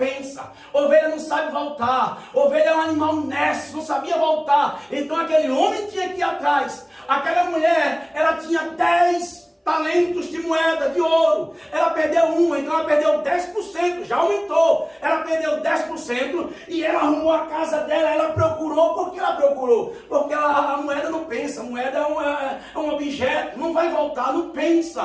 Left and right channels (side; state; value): both; identical; correlation 1.00